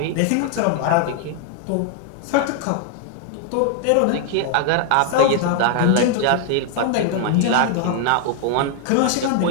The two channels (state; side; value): different; both; correlation 0.00